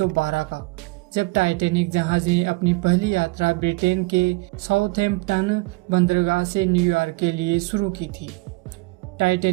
का, जब टाइटैनिक जहाज ने अपनी पहली यात्रा ब्रिटेन के साउथहैम्पटन बंदरगाह से न्यूयॉर्क के लिए शुरू की थी।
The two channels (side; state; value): left; quieter; 23.5 dB